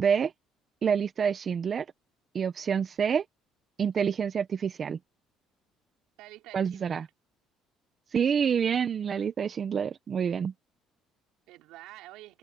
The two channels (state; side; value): quieter; left; 6.8 dB